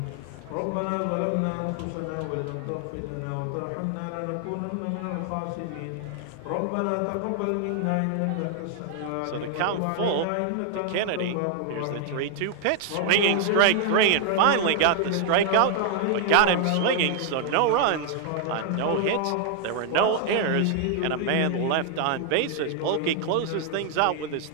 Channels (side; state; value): both; different; correlation 0.00